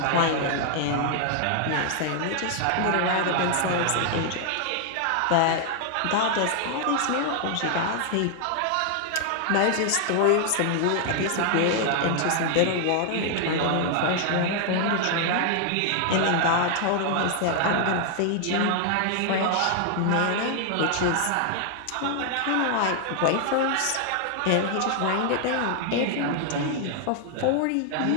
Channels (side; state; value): both; different; correlation 0.00